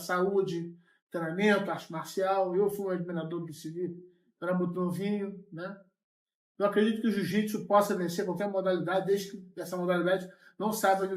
treinamento, arte marcial. Eu fui um admirador do Bruce Lee, era muito novinho, né? Eu acredito que o jiu-jitsu possa vencer qualquer modalidade, desde que essa modalidade não saiba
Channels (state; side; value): identical; both; correlation 1.00